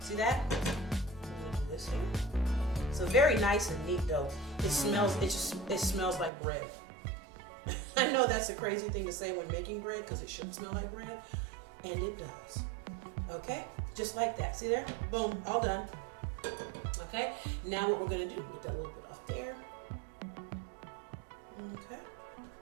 See that? I'm gonna do this here. So very nice and neat though. It smells like bread. I know that's a crazy thing to say when making bread because it should smell like bread, and it does. Okay? Just like that. See there? Boom. All done. Okay? Now what we're going to do, get that little bit off there. Okay.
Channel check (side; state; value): left; drops out; at 6.3 s